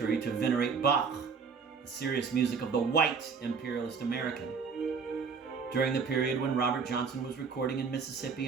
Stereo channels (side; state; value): left; quieter; 5.5 dB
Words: to venerate Bach, the serious music of the white imperialist American. During the period when Robert Johnson was recording in Mississippi,